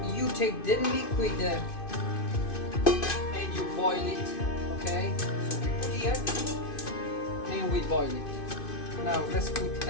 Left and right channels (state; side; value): late; right; 2.5 ms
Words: You take the liquid and you boil it. Okay. So we put here and we boil it. Now let's put